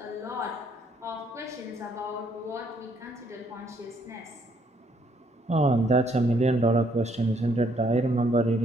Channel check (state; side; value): normal; both; correlation 0.68